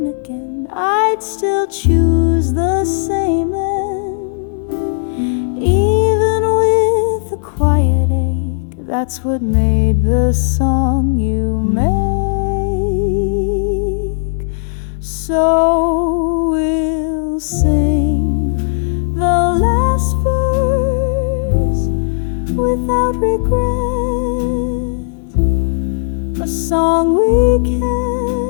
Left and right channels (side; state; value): right; silent; digital silence